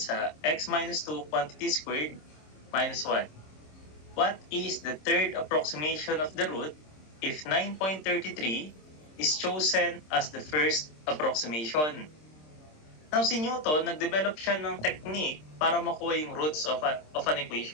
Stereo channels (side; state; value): right; late; 26 ms